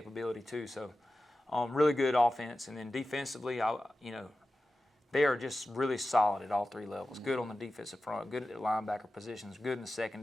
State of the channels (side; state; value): both; normal; correlation 0.94